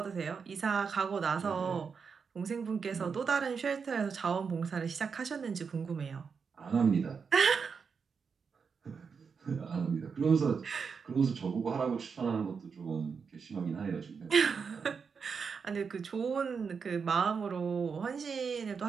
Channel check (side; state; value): left; quieter; 5.8 dB